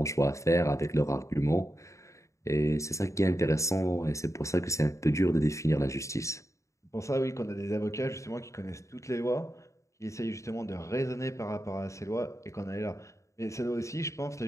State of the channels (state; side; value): late; right; 0.15 ms